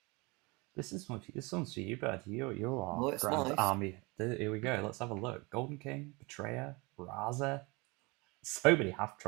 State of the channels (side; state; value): left; quieter; 26.6 dB